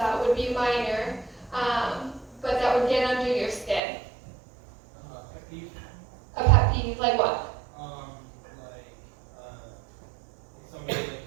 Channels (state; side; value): drops out; left; at 3.8 s